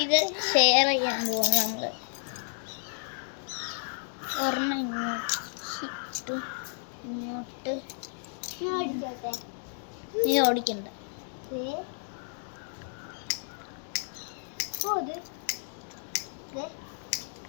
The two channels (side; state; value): right; silent; digital silence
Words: ഇത് ഷെയർ ചെയ്യാൻ പോവാണ് നമ്മള്. ഒരെണ്ണം ഇങ്ങോട്ട് ഇങ്ങോട്ട്. നീ ഓടിക്കണ്ട.